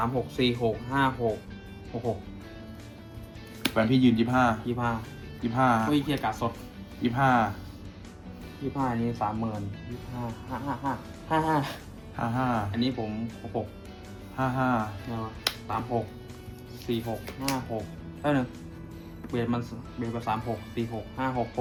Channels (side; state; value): both; identical; correlation 1.00